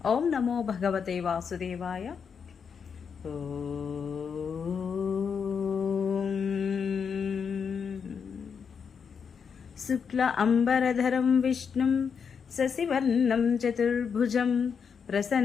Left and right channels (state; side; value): quieter; right; 6.5 dB